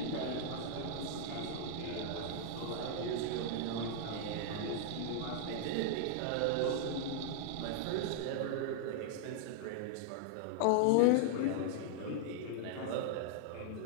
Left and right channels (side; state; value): both; different; correlation -0.01